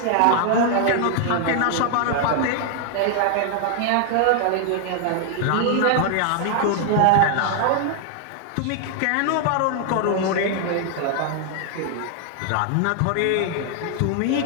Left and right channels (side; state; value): both; different; correlation 0.00